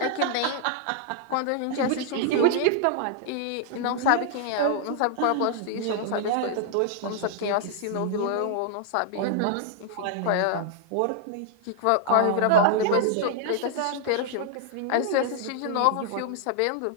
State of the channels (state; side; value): different; both; correlation -0.01